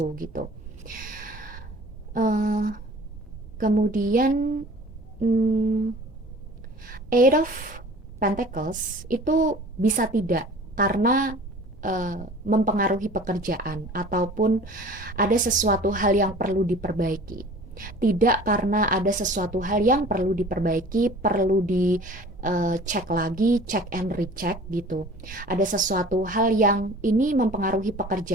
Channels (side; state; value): both; normal; correlation 0.45